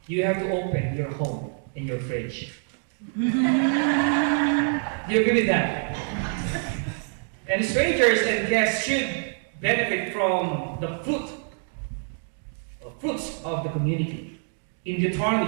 you have to open your home and your fridge. Do you agree with that? And strangers and guests should benefit from the fruits of the community. In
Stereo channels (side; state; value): left; silent; 55 dB below the other